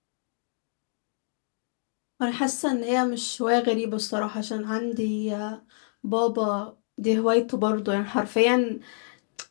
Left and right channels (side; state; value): right; silent; digital silence